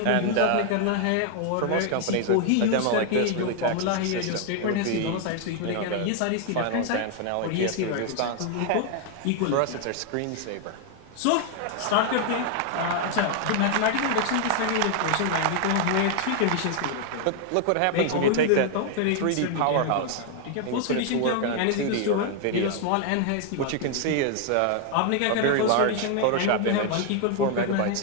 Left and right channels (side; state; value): both; different; correlation 0.00